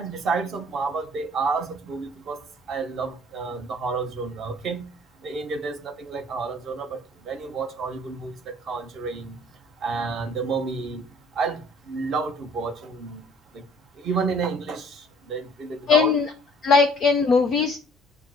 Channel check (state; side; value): normal; both; correlation 0.55